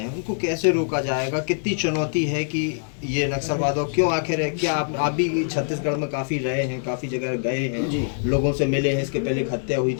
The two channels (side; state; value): right; silent; digital silence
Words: हैं, उनको कैसे रोका जाएगा? कितनी चुनौती है कि ये नक्सलवाद, और क्यों आखिर है? क्या आप भी छत्तीसगढ़ में काफ़ी रहे हैं, काफ़ी जगह गए हैं, लोगों से मिले हैं, इसके पहले एक हत्या हुई